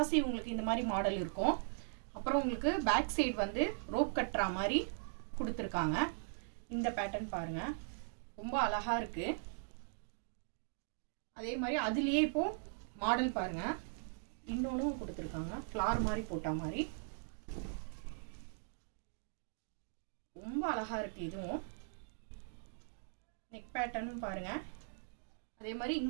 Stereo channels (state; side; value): silent; left; digital silence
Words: உங்களுக்கு இந்த மாதிரி மாடல் இருக்கும். அப்புறம் உங்களுக்கு பேக் சைடு வந்து ரோப் கட்டற மாதிரி கொடுத்திருக்காங்க. இந்த பேட்டர்ன் பாருங்க, ரொம்ப அழகா இருக்கு. அதே மாதிரி அதுலயே இப்போ மாடல் பாருங்க, இன்னொன்னு கொடுத்திருக்காங்க. ஃப்ளார் மாதிரி போட்ட மாதிரி ரொம்ப அழகா இருக்கு. இதுவும் நெக் பேட்டர்னும் பாருங்க. அதே மாதிரி